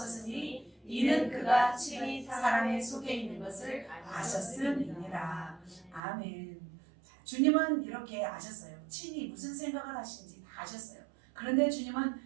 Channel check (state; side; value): drops out; left; at 6.0 s